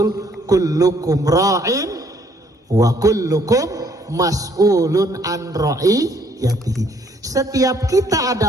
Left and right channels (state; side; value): normal; both; correlation 0.65